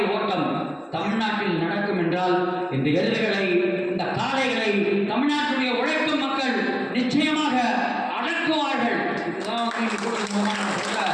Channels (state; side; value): identical; both; correlation 1.00